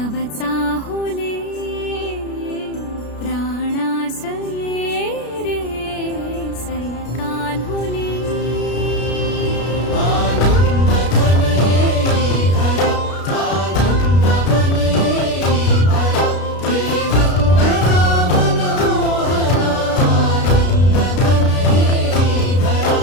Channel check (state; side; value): late; right; 33 ms